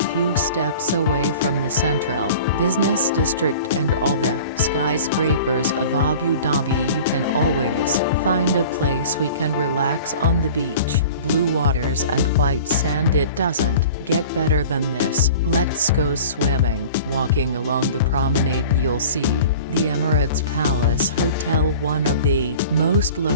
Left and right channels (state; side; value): inverted; both; correlation -0.42